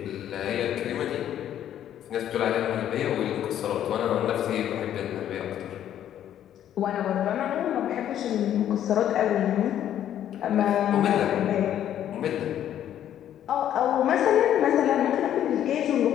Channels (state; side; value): quieter; right; 10.8 dB